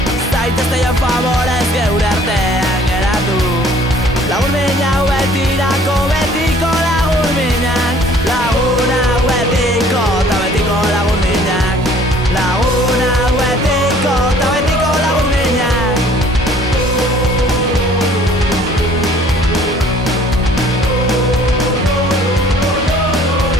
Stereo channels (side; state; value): both; normal; correlation 0.55